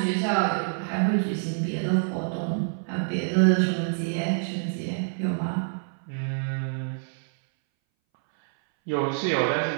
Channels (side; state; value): left; silent; 61 dB below the other